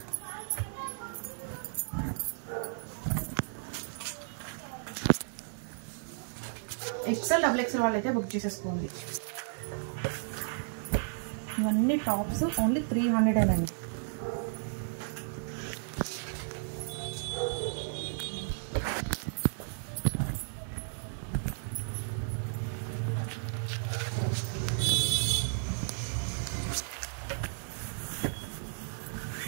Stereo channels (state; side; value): silent; left; digital silence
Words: XL XXL వాళ్ళు అయితే బుక్ చేసేసుకోండి. ఇవన్నీ టాప్స్ ఓన్లీ 300 అండి.